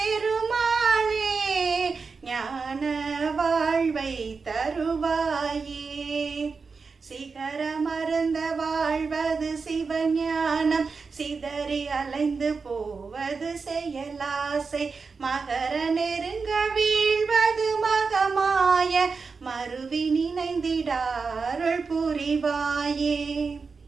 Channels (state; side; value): quieter; left; 4.8 dB